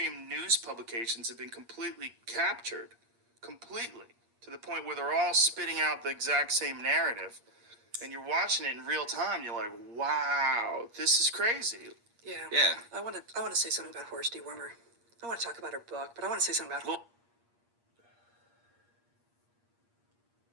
news publications have been completely captured, completely, to the point where they're all spitting out the exact same narrative. And you're watching it in real time, you're like, wow, this is crazy. Yeah. I want to say something about Horse Dewormer. I want to talk about her book, but I want to say something about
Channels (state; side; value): late; left; 8.5 ms